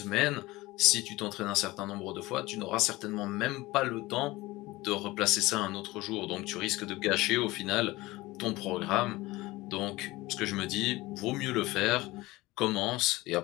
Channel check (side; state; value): right; quieter; 19.9 dB